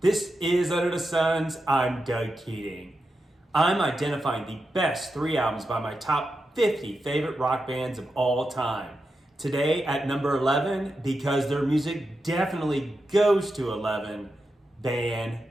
This is Under the Suns. I'm Doug Keating. I'm identifying the best 3 albums by my top 50 favorite rock bands of all time. Today at number 11, because their music definitely goes to 11, Van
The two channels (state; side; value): normal; both; correlation 0.88